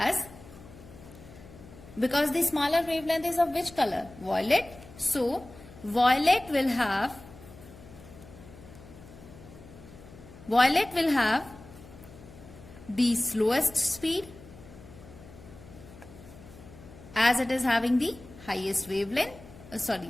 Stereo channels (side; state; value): left; noise; hum, 19 dB below the sound